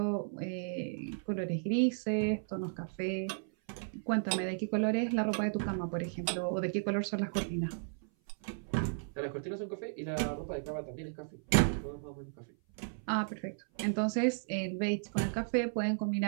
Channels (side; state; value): left; silent; 55 dB below the other